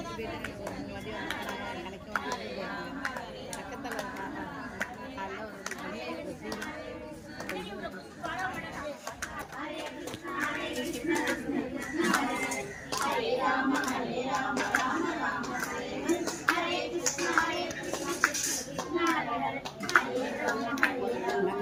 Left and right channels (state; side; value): identical; both; correlation 1.00